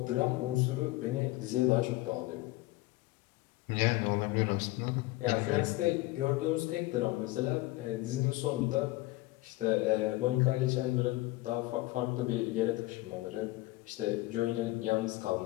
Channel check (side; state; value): right; quieter; 19.4 dB